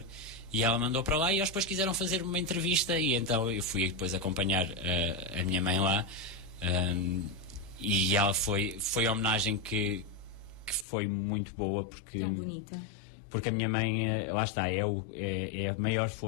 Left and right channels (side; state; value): right; drops out; at 10.9 s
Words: e ela mandou para lá, e eles depois quiseram fazer uma entrevista, e então eu fui depois acompanhar a minha mãe lá, e ela foi a homenagem que foi muito boa, porque... Tão bonita. Porque a minha mãe, lá está, é a maior